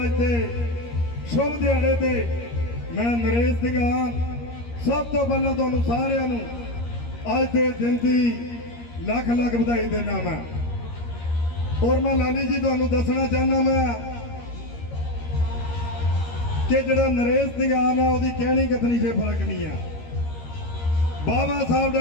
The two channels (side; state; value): right; late; 13 ms